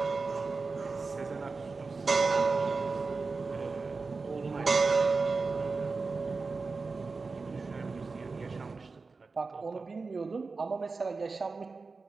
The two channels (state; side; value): quieter; left; 4.2 dB